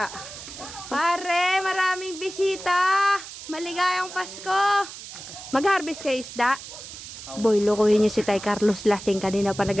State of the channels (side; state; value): right; noise; hiss, 13 dB below the sound